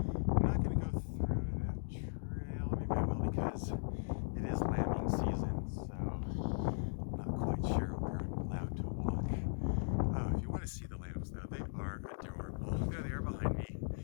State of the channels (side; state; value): right; silent; digital silence